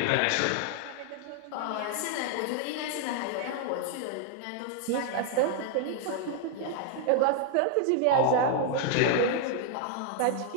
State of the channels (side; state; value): both; different; correlation 0.00